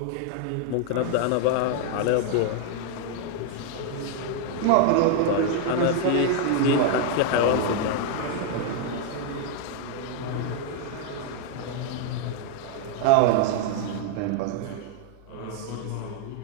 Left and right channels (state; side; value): different; both; correlation 0.00